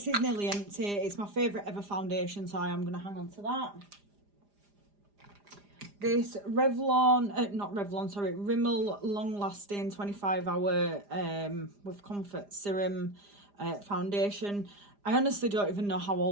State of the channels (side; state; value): left; late; 4.9 ms